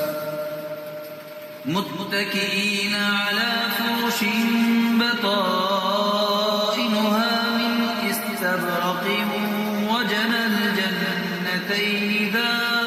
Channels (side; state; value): both; identical; correlation 1.00